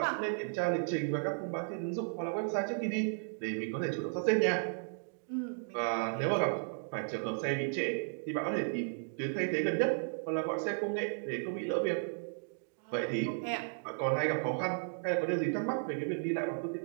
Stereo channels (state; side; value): silent; left; digital silence